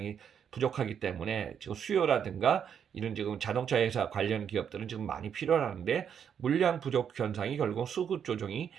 부족하기 때문에 지금 수요라든가 이런 지금 자동차 회사 관련 기업들은 지금 많이 필요하는데 물량 부족 현상이 결국 수급 조정이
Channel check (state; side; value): quieter; left; 8.1 dB